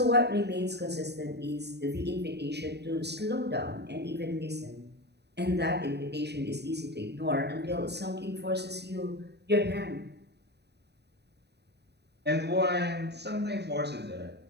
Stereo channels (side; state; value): left; late; 0.49 ms